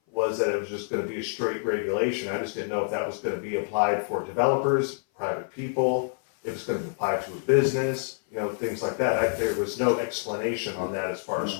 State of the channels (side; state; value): right; silent; 57 dB below the other